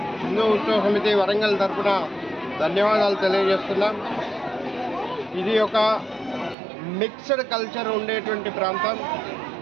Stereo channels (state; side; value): drops out; left; at 6.6 s